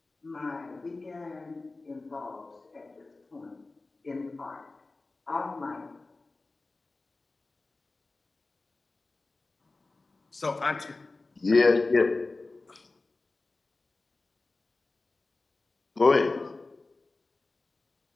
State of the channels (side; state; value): right; quieter; 3.4 dB